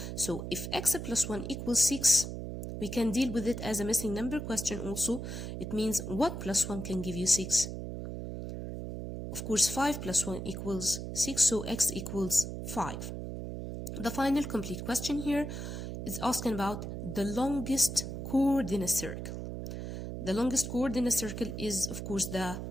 So if x plus 1 equals 6, we can deal with it as a missing number question also. It means what plus 1 can give you 6? Of course, 5 plus 1 equals 6, so x equals 5. The final complete question here is asking about the longest chord in a circle. The longest chord in a circle is, of course, the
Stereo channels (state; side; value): noise; right; hum, 6 dB below the sound